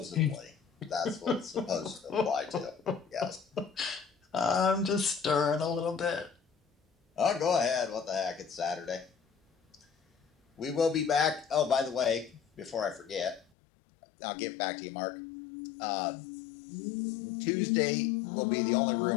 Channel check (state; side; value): drops out; right; at 13.5 s